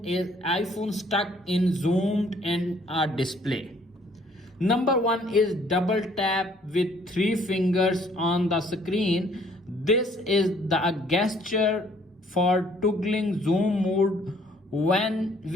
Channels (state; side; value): normal; both; correlation 0.61